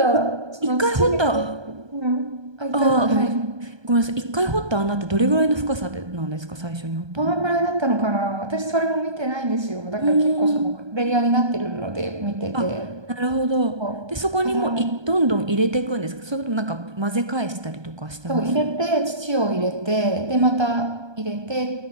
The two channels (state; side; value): late; left; 1.3 ms